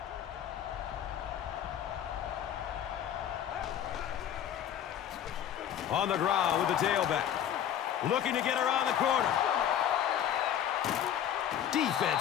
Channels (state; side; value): quieter; right; 10.0 dB